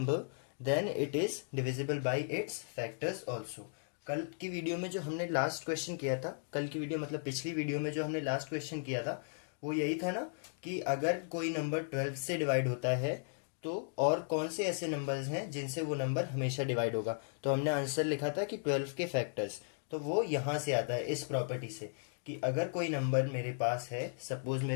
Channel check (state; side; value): silent; right; digital silence